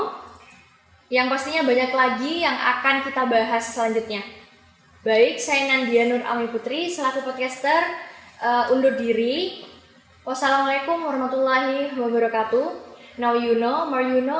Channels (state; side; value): identical; both; correlation 1.00